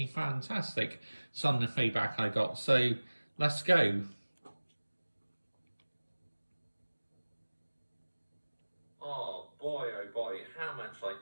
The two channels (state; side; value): inverted; both; correlation -1.00